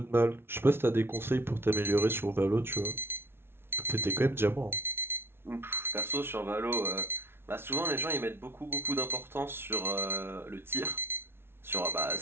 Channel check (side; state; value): left; late; 0.12 ms